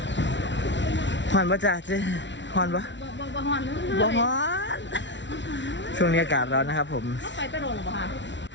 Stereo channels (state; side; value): late; right; 0.53 ms